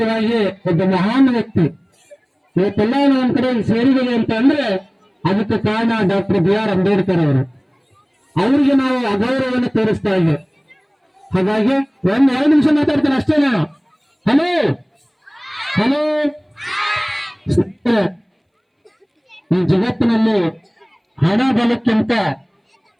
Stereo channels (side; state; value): both; identical; correlation 1.00